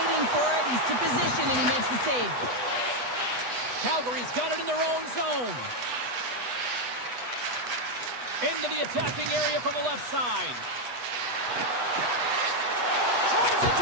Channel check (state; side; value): late; left; 8.1 ms